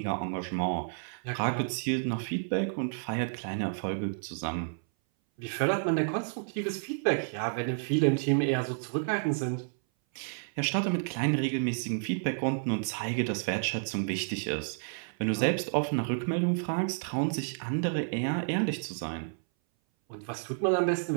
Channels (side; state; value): left; silent; 57 dB below the other